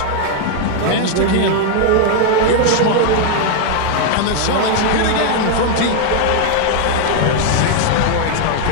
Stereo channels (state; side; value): different; both; correlation 0.00